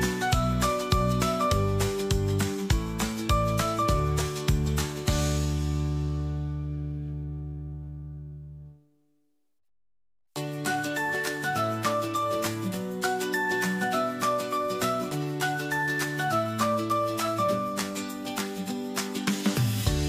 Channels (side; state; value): both; identical; correlation 1.00